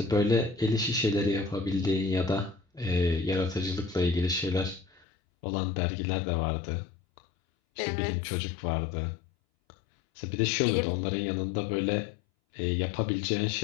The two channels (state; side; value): drops out; right; at 5.1 s